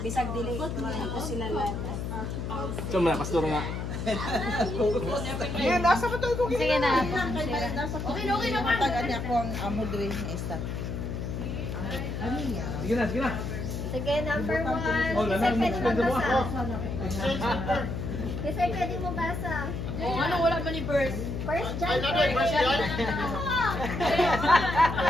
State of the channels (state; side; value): noise; left; hum, 4 dB below the sound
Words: dili ko sila lahat. Cuma pastor nga. Yan, nasa pa tayo kung Sige na. Okay na. Tagaan niya ako ang amodre na isa. Sige na, sige na. Sige, number 1. Oh, Kasi lanang pwede mo magbasa. ako. Kasi pwede mo basa. Ano wala man ni First? First John 4.